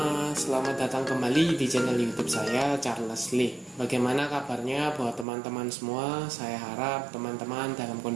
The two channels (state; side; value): drops out; left; at 5.2 s